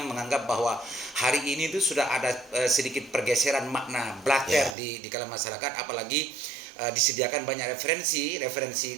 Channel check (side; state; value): left; drops out; at 4.8 s